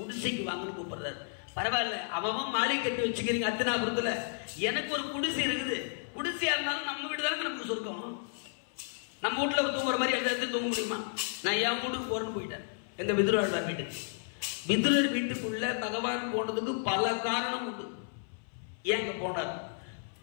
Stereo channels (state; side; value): silent; right; 56 dB below the other